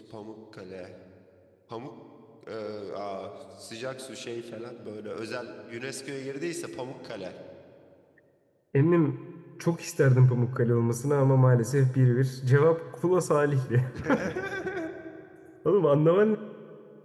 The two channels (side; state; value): both; identical; correlation 1.00